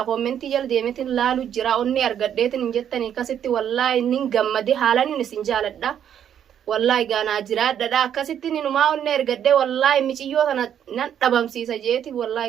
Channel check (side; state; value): left; quieter; 9.4 dB